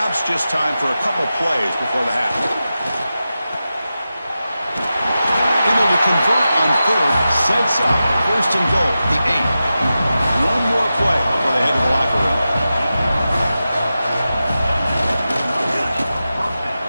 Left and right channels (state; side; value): inverted; both; correlation -0.92